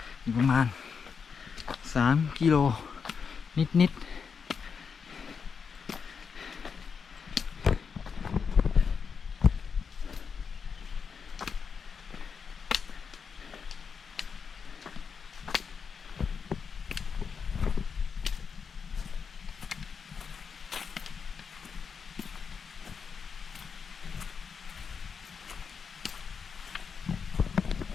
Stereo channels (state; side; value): quieter; right; 6.0 dB